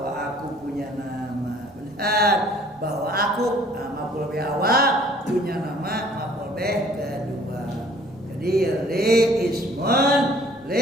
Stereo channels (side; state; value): both; normal; correlation 0.56